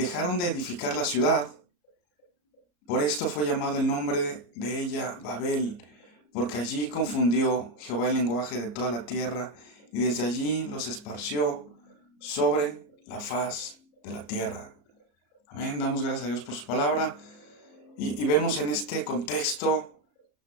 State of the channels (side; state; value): right; late; 34 ms